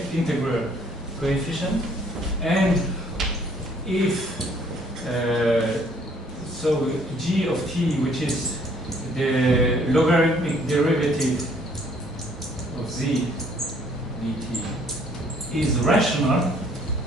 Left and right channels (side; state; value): both; normal; correlation 0.61